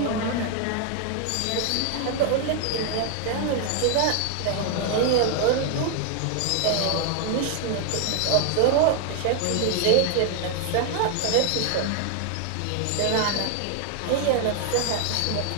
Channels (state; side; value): different; both; correlation 0.00